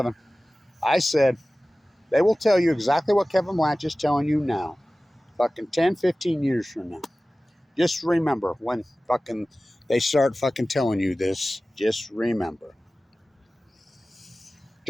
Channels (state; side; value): normal; both; correlation 0.97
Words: I said, they will tell you exactly what Kevin Blanch is telling you now. Fucking 10, 15 years from now. Just remember when fucking they start fucking telling you this. Just remember.